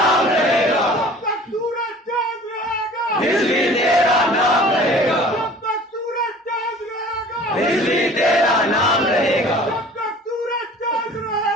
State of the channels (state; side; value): normal; both; correlation 0.46